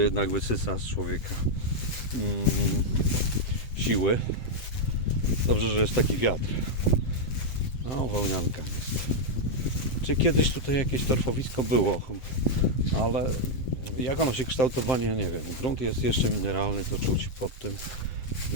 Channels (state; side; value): late; right; 8.0 ms